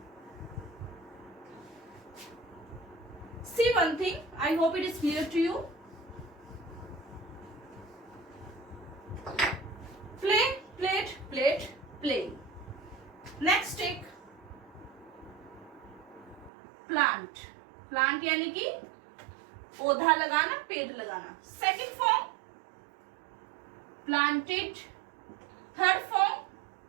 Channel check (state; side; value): drops out; left; at 16.5 s